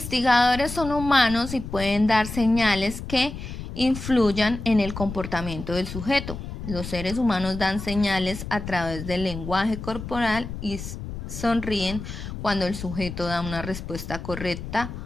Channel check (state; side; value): noise; left; rumble, 9 dB below the sound